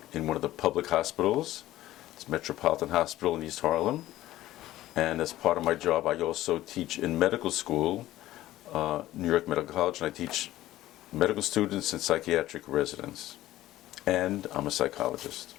in one of the public hospitals. It's Metropolitan Hospital in East Harlem. And as part of my job, I also teach in medical school, New York Medical College, and I teach medical students and psychiatric residents. And I'm a psychologist.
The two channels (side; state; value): right; quieter; 15.1 dB